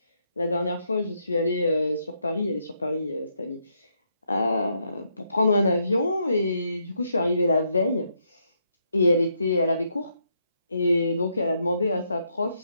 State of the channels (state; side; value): inverted; both; correlation -0.77